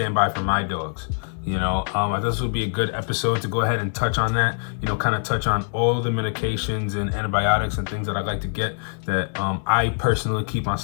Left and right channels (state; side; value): silent; right; digital silence